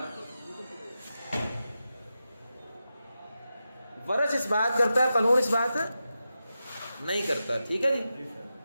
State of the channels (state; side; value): inverted; both; correlation -0.90